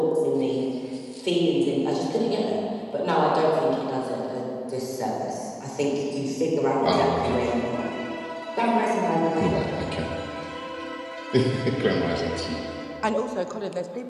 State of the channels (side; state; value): both; identical; correlation 1.00